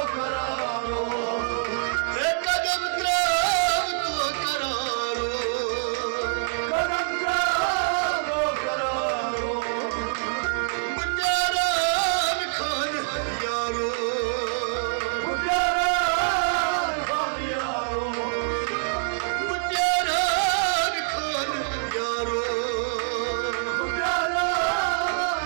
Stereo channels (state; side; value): silent; left; 61 dB below the other